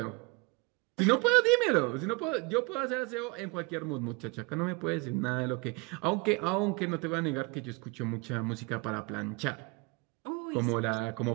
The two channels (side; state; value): left; quieter; 27.5 dB